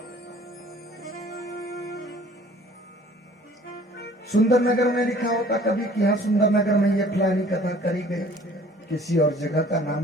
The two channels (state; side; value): normal; both; correlation 0.52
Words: सुंदर नगर में लिखा होता कभी कि हाँ सुंदर नगर में ये फलानी कथा करी गई, किसी और जगह का नाम